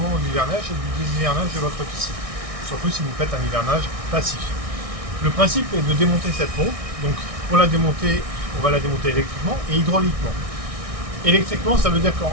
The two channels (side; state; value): left; late; 1.6 ms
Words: de l'hivernage et du déshivernage de votre piscine, surtout si vous faites un hivernage passif. Le principe est de démonter cette pompe. Donc, pour la démonter, on va la démonter électriquement et hydrauliquement. Électriquement, ça veut dire